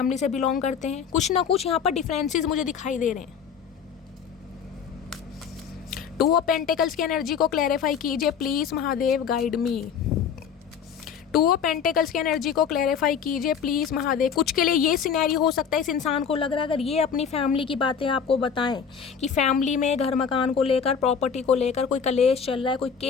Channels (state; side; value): quieter; right; 7.0 dB